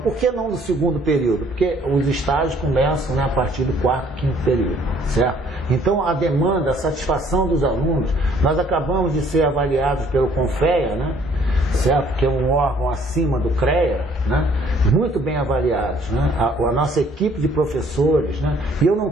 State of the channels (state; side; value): normal; both; correlation 0.61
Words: por que não no 2º período? Porque os estágios começam, né, a partir do 4º, 5º período, certo? Então a demanda, a satisfação dos alunos, nós acabamos de ser avaliados pelo CONFEA, né, certo? Que é um órgão acima do CREA, né? Muito bem avaliados, né? A nossa equipe de professores, né? E eu não